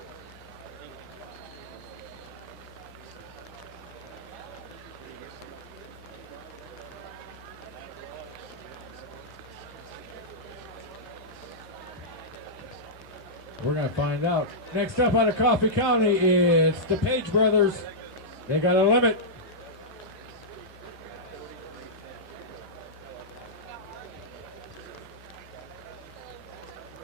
We're going to find out. Next up out of Coffee County, it's the Page brothers. They got a limit.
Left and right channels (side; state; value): both; normal; correlation -0.12